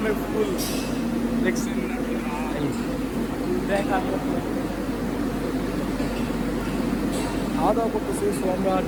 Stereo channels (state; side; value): identical; both; correlation 1.00